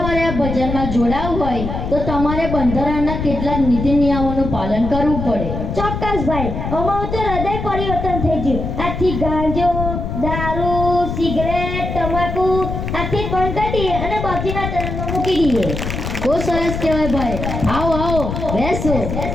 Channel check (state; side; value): noise; left; rumble, 4 dB below the sound